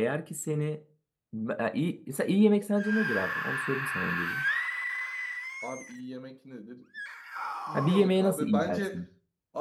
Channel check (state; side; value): identical; both; correlation 1.00